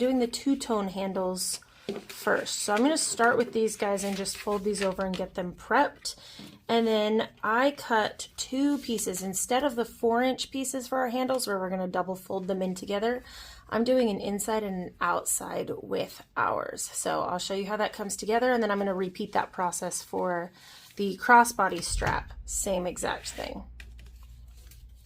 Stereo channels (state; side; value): identical; both; correlation 1.00